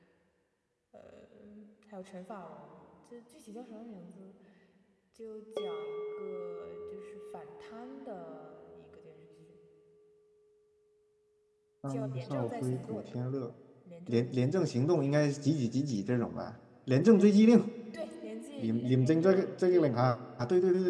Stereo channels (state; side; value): identical; both; correlation 1.00